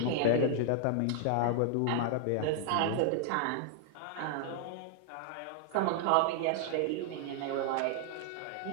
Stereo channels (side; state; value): both; different; correlation 0.00